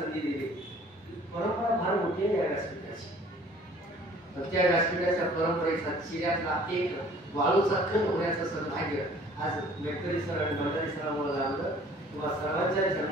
दिली. परंपरा फार मोठी आहे या व्यासपीठाची. त्या व्यासपीठाच्या परंपरेचा चिऱ्यातला एक वाळूचा खंड होण्याचं सौभाग्य आज मेटकरी सर आणि भंडारी सरांमुळे लाभलं. तुम्हा सर्वांच्या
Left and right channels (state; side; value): normal; both; correlation 0.52